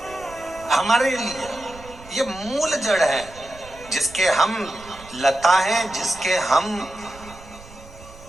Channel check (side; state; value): right; noise; rumble, 19 dB below the sound